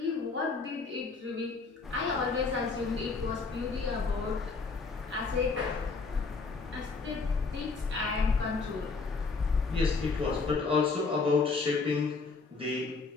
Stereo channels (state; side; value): quieter; right; 4.3 dB